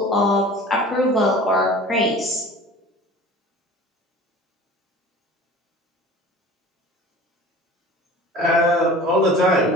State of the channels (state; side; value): normal; both; correlation 0.41